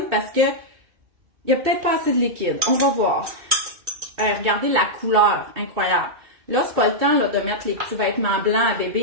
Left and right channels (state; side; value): late; left; 2.6 ms